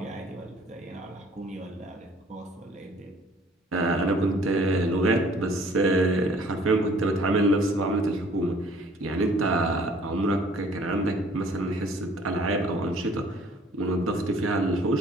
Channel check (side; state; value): both; normal; correlation 0.56